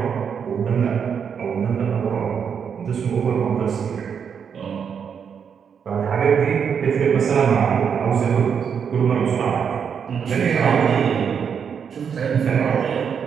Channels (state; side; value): quieter; left; 7.1 dB